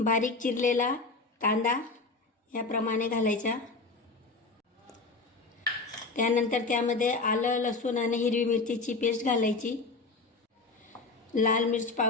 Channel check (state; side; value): quieter; right; 3.7 dB